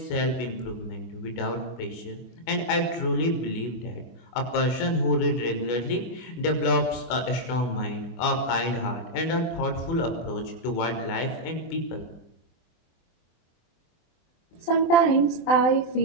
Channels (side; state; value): right; late; 24 ms